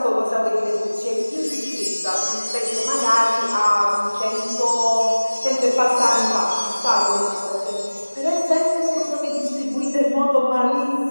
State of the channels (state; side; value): inverted; both; correlation -1.00